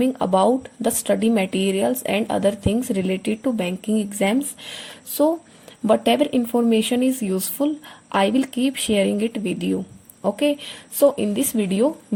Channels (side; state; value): both; identical; correlation 1.00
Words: about the study materials and other things related to banking exams. So, whatever information is useful, I will keep sharing it with you. Okay, so in this video